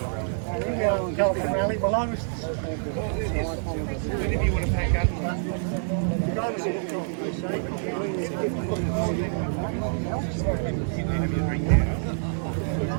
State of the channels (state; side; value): silent; left; 60 dB below the other